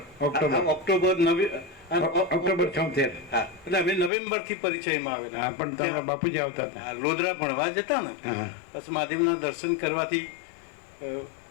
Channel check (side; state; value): right; drops out; at 4.1 s